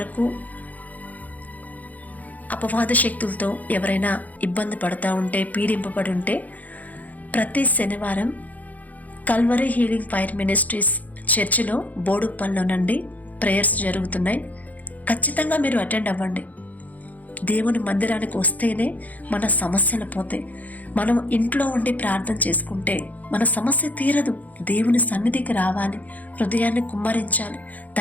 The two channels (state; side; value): late; right; 0.079 ms